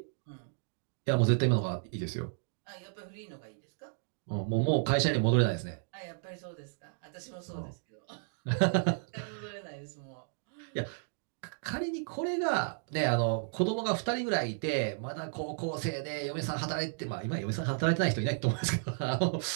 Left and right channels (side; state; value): left; silent; digital silence